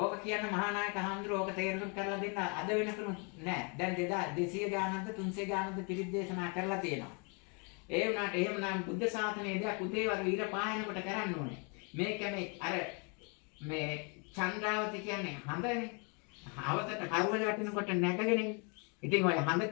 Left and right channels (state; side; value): quieter; right; 35.0 dB